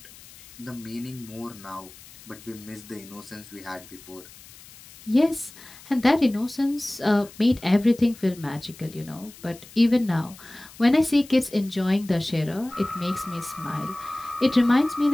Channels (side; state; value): left; noise; hiss, 20 dB below the sound